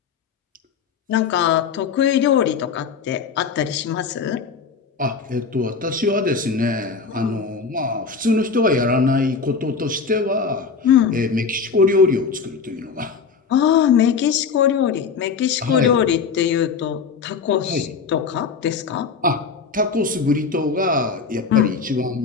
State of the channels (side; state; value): right; quieter; 5.4 dB